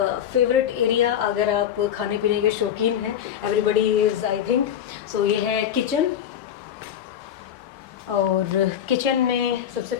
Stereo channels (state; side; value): quieter; right; 9.7 dB